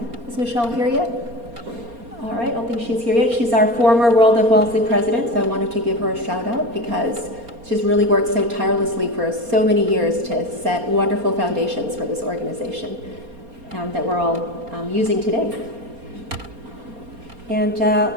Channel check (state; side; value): late; left; 4.3 ms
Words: Is Michelle here yet? All right, I don't think she's here yet. She's our former World of Wellesley president, so I wanted to give her a shout out because she's really worked so tirelessly for so many years to set wonderful foundations for this organization that we're all using today. And